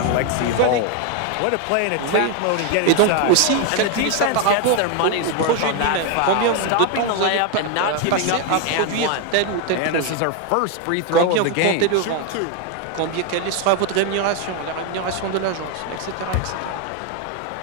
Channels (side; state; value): both; different; correlation 0.01